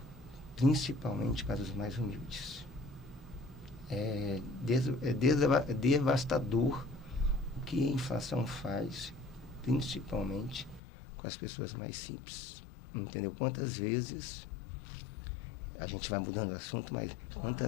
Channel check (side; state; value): right; drops out; at 10.8 s